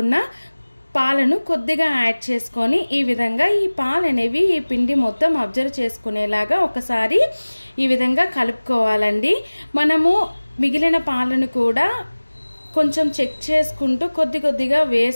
పాలను కొద్దిగా యాడ్ చేసుకొని ఈ విధంగా ఈ పాలు అనేవి ఈ పిండి మొత్తం అబ్జర్వ్ చేసుకునేలాగా ఒకసారి ఈ విధంగా కలుపుకోవాలండి. మనము మిగిలిన పాలను కూడా కొంచెం చెక్ చేసుకుంటూ కొద్దిగా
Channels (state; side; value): inverted; both; correlation -1.00